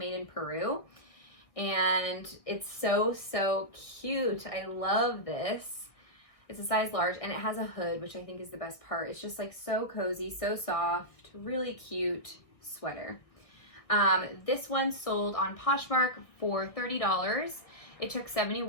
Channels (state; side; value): late; right; 1.6 ms